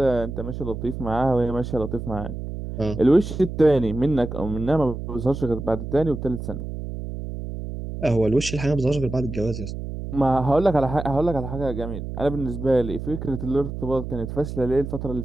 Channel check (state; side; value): noise; right; hum, 7 dB below the sound